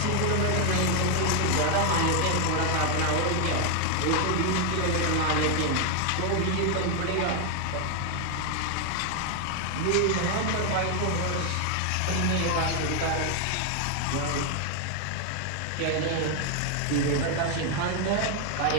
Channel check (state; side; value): different; both; correlation 0.01